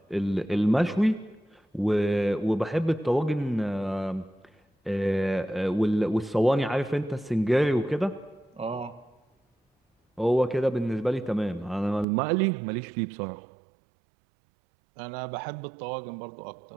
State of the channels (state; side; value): drops out; left; at 12.1 s